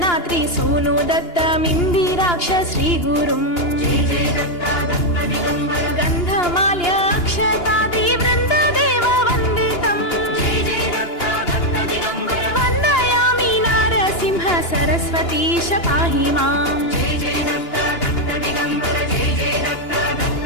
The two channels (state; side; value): late; right; 2.9 ms